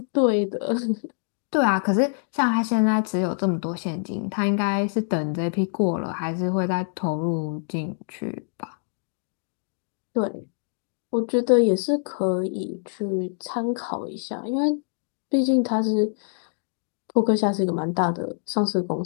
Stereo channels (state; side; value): silent; right; 62 dB below the other